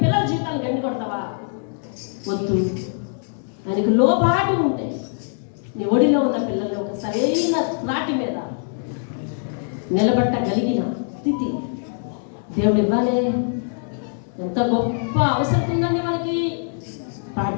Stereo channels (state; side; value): silent; right; 64 dB below the other